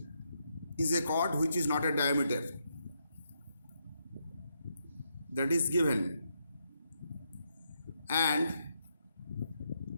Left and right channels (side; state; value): both; inverted; correlation -0.80